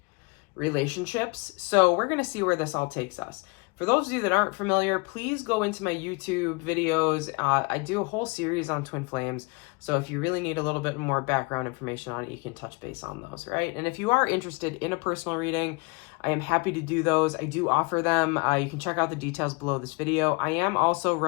relationships. So we're going to see where this all takes us. For those of you that aren't familiar, please go into my YouTube videos. I do a whole series on twin flames. So if you really need a little bit more background information on it, you can touch base on those, right? And if you are interested in a personal reading, I am happy to do those. I do offer them. You can check out the details below this video. I am also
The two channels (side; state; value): right; quieter; 29.3 dB